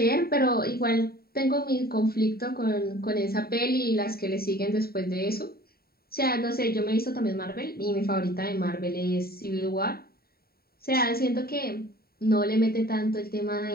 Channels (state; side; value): late; right; 0.44 ms